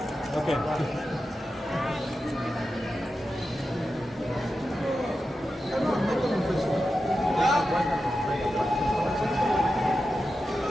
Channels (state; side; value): normal; both; correlation 0.91